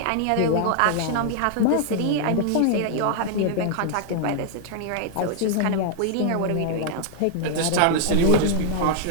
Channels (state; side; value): different; both; correlation -0.01